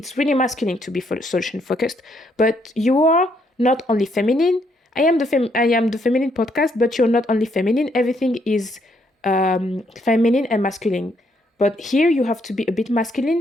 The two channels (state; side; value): normal; both; correlation 0.73